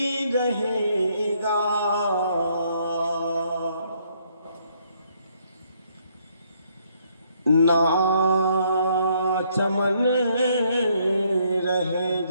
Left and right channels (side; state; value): both; inverted; correlation -0.69